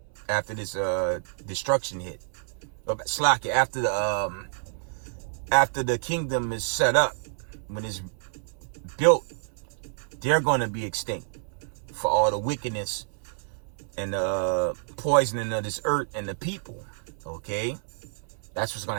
after this destruction hit. Slack, after the kingdom is set up, when it's built, they're going to be extinct for all the wickedness and the poisoning of this earth and the people. Okay? That's what's going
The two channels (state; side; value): silent; left; 57 dB below the other